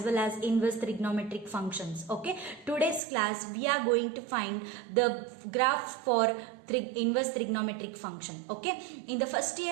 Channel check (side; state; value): left; drops out; at 3.0 s